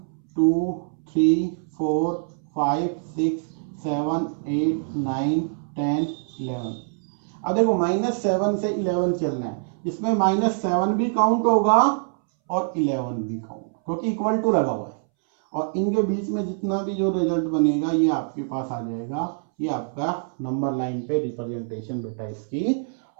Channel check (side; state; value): left; silent; 62 dB below the other